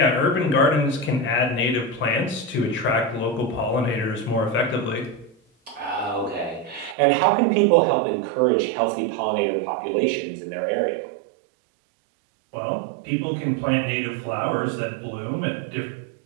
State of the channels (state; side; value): drops out; left; at 7.0 s